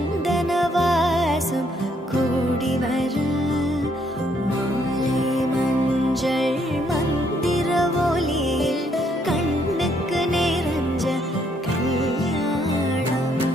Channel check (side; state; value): both; normal; correlation 0.70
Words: வாசம் கூடி வர மாலை மஞ்சள் மந்திர ஒலியில் கண்ணுக்கு நிறைஞ்ச கல்யாணம்